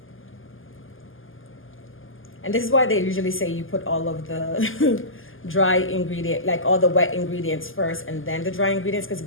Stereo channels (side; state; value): right; late; 0.59 ms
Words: And this is why they usually say you put all of the dry ingredient, like all the wet ingredients first and then the dry ingredients, because